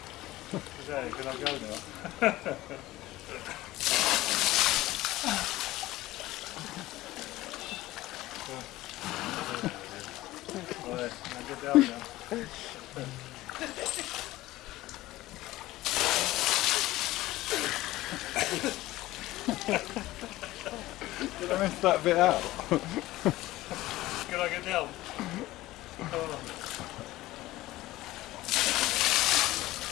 Can I go now? Right, now get down now. Did I miss that bit out? Can I get down?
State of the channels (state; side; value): quieter; right; 17.2 dB